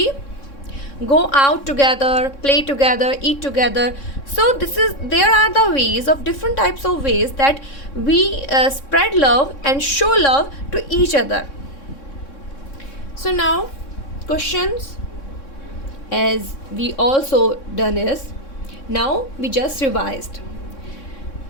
go out together, play together, eat together. So there are the ways of different types of ways that we spread love and show love to each other. So now questions, as we also done is, now we just revised.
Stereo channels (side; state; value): right; late; 3.6 ms